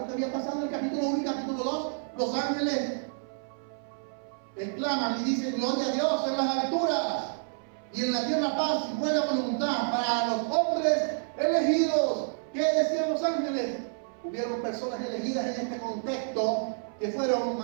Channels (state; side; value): silent; left; 58 dB below the other